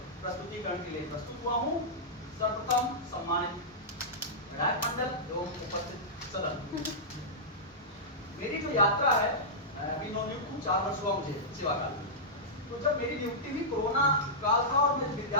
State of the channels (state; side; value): normal; both; correlation -0.12